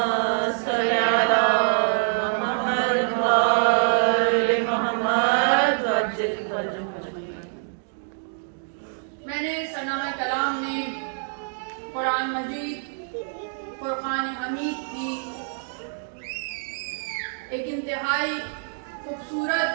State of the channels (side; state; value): left; silent; digital silence